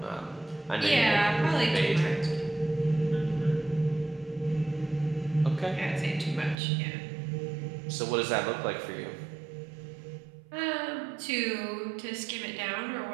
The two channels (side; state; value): left; drops out; at 6.6 s